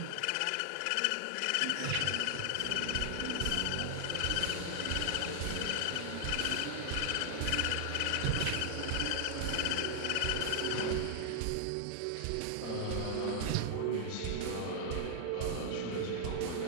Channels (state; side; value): different; both; correlation -0.01